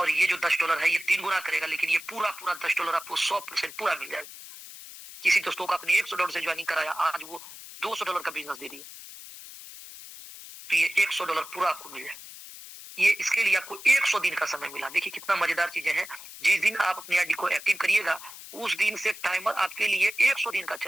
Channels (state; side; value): noise; left; hiss, 15 dB below the sound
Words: ये जो $10 है ये 3 गुना करेगा, लेकिन ये पूरा $10 आपको 100% पूरा मिल जाएगा। किसी दोस्तों को अपने $100 से ज्वाइनिंग कराया, आज वो $200 का बिजनेस दे रही है, तो ये $100 पूरा आपको मिल जाए। ये इसके लिए आपको 100 दिन का समय मिला। देखिए कितना मजेदार चीजें हैं। जिस दिन आप अपनी आईडी को एक्टिव करिएगा उस दिन से टाइमर आपके लिए 100 दिन का